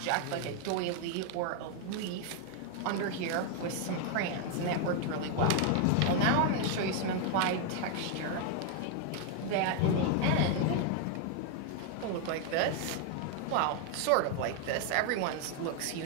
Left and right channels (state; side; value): different; both; correlation 0.00